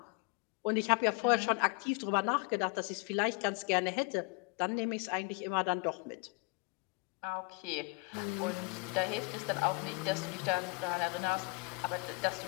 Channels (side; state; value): right; quieter; 29.1 dB